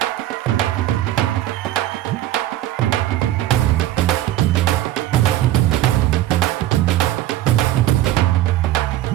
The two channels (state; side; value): quieter; left; 13.8 dB